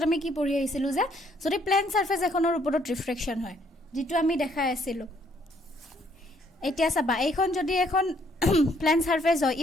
আমি কি পঢ়ি আহিছিলো যে যদি প্লেন সাৰফেস এখনৰ ওপৰত ৰিফ্ৰেকশ্যন হয় যেটো আমি দেখাই আছিলো এতিয়া চাবা এইখন যদি এখন প্লেন সাৰফেস হয়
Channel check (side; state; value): both; normal; correlation 0.67